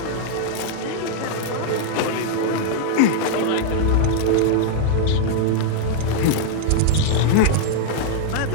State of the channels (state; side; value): different; both; correlation -0.01